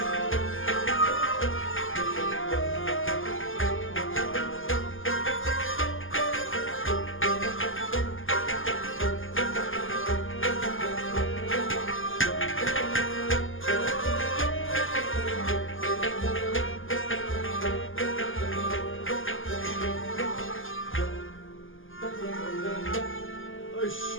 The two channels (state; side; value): late; right; 0.58 ms